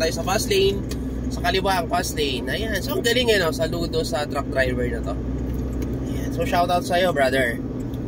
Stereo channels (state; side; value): identical; both; correlation 1.00